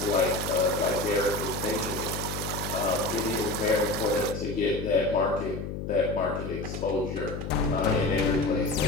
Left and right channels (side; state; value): left; noise; hum, 6 dB below the sound